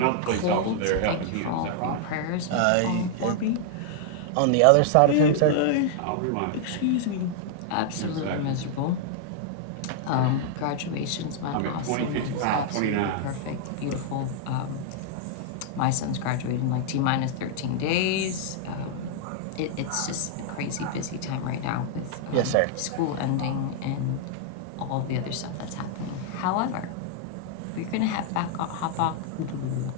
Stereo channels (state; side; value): different; both; correlation -0.01